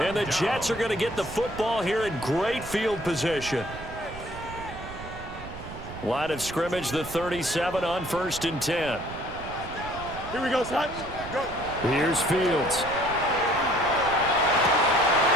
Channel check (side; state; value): right; noise; rumble, 13 dB below the sound